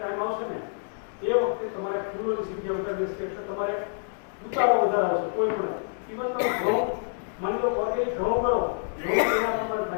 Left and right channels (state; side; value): silent; right; digital silence